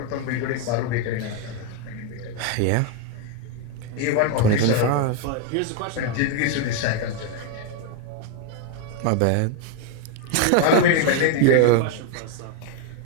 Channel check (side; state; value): both; different; correlation 0.01